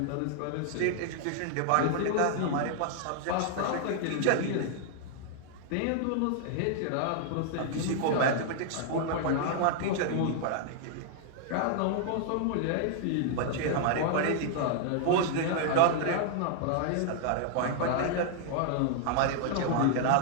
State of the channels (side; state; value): both; different; correlation -0.01